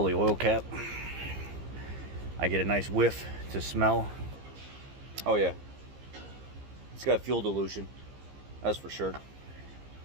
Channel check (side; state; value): left; late; 15 ms